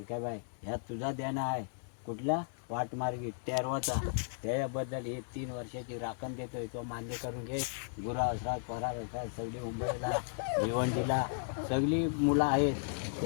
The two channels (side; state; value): right; silent; digital silence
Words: ह्या तुझा देणं आहे. कुठला वाटमार्गी तेरवाचा, त्याच्याबद्दल ही 3 वर्षाची राखण देतोय. तो मान्य करून घे. गुरा असतात, परार असतात, सगळी मुंबईला भिवंडीला सगळी मुलं आहेत,